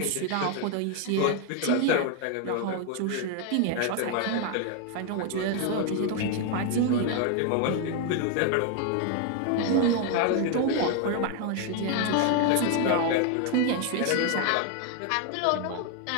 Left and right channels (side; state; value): both; different; correlation 0.00